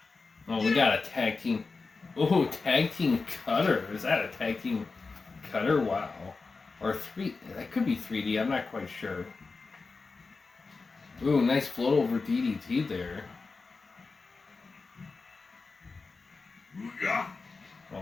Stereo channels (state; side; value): quieter; right; 4.2 dB